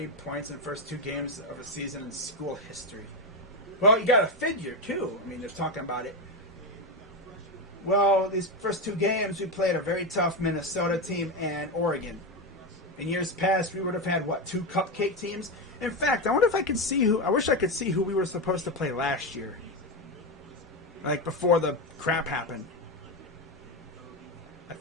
points in the first 2 games of a season in school history. Well, you got to figure, too. I mean, they're talking about it. Well, these first 2 games, we played a very tough Minnesota team and Oregon. In years past, we would have had, 2 cupcake teams? In fact, I wonder if I could see I wish I could see who we were supposed to play last year. Like, before the crap happened. I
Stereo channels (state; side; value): normal; both; correlation 0.12